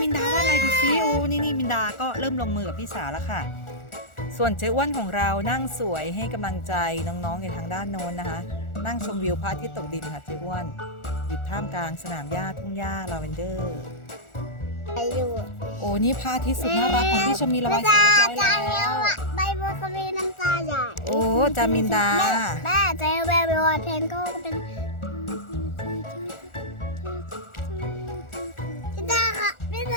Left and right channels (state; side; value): late; right; 1.4 ms